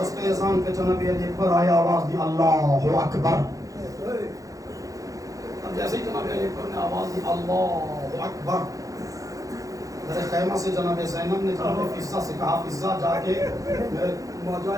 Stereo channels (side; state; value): left; late; 0.17 ms